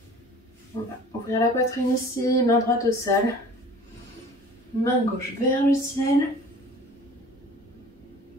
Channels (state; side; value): normal; both; correlation 0.45